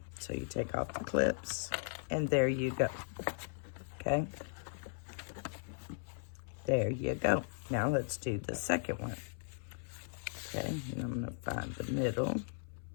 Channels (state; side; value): silent; right; 53 dB below the other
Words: So you take off the clips, and there you go. Okay, there you go. Now let's do the second one. Okay, and I'm going to find the middle.